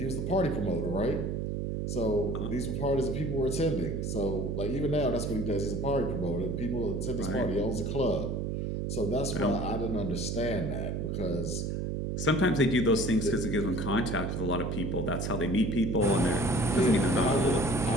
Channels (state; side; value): noise; right; hum, 2 dB below the sound